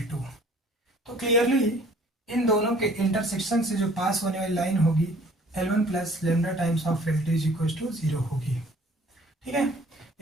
तो क्लियरली इन दोनों के इंटरसेक्शन से जो पास होने वाली लाइन होगी L1 plus lambda times of L2 is equal to 0 होगी। ठीक है,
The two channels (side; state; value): both; normal; correlation 0.54